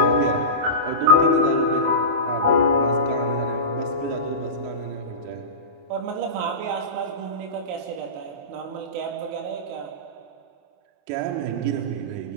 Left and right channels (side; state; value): left; late; 28 ms